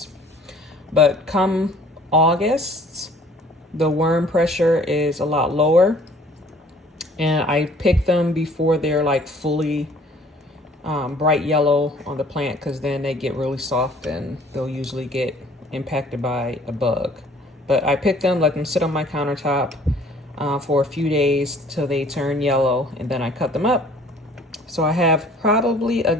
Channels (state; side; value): normal; both; correlation 0.54